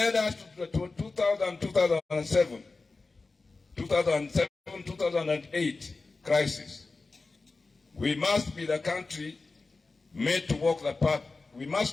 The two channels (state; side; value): quieter; right; 3.8 dB